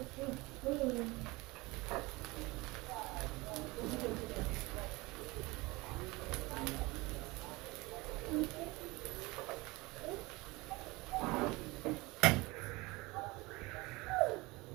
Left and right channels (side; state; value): left; quieter; 23.0 dB